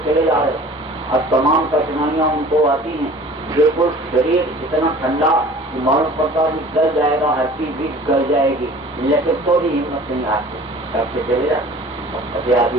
चले जा रहे, और तमाम कठिनाइयां उनको आती हैं। बिल्कुल शरीर इतना ठंडा मालूम पड़ता भी गल जाएगा, हर चीज भी गल जाएगी, लेकिन तो भी हिम्मत नहीं आती, सबसे चले जाते और फतेह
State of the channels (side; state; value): both; normal; correlation 0.45